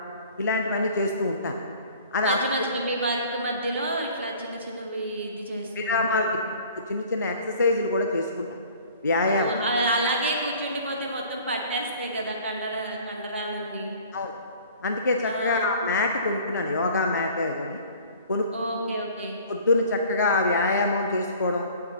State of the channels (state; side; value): inverted; both; correlation -0.49